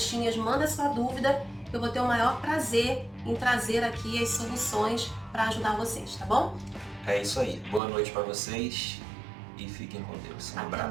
manda sua dúvida. Eu vou ter o maior prazer em trazer aqui as soluções para ajudar vocês, tá bom? É isso aí. Boa noite para vocês e fiquem com Deus. Um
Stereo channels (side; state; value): left; drops out; at 7.8 s